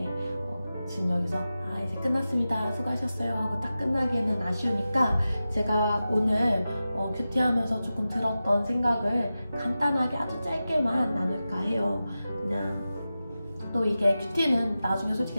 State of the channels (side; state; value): both; inverted; correlation -0.93